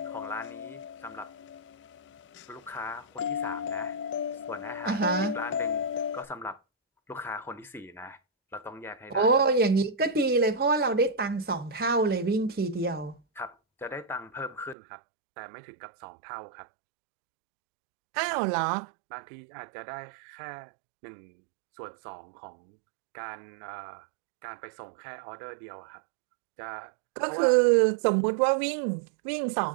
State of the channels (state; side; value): drops out; left; at 14.8 s